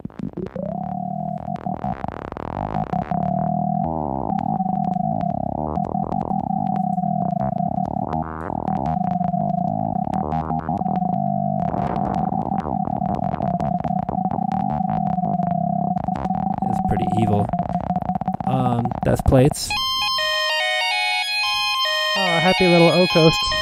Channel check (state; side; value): identical; both; correlation 1.00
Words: It's pretty evil. That's plates. Oh, happy little O-Coast.